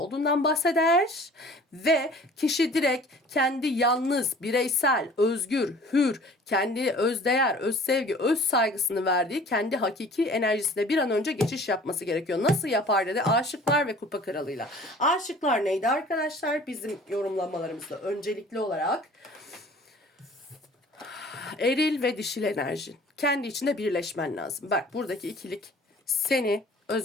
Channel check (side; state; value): both; normal; correlation 0.48